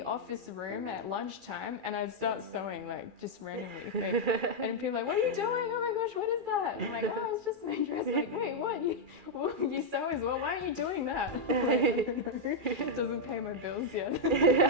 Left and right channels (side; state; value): left; late; 2.4 ms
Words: office room at lunchtime, and I'd start sewing, like, just randomly. And people are like, what are you doing? Oh my gosh, what is that? And I'm like, oh, it's just my dress. Like, hey, what? You sew as well? Why are you doing that? It doesn't pay my bills yet.